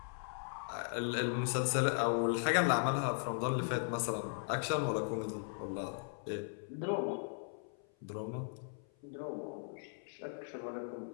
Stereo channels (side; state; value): right; silent; 53 dB below the other